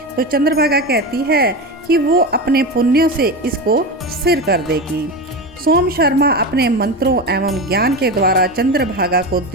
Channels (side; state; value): both; normal; correlation 0.21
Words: तो चंद्रभागा कहती है कि वो अपने पुण्यों से इसको स्थिर कर देगी। सोम शर्मा अपने मंत्रों एवं ज्ञान के द्वारा चंद्रभागा को